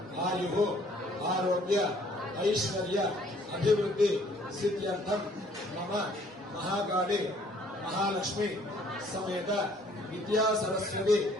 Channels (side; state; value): both; normal; correlation 0.60